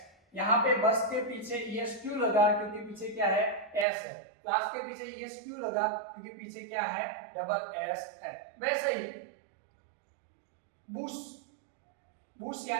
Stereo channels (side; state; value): left; drops out; at 3.9 s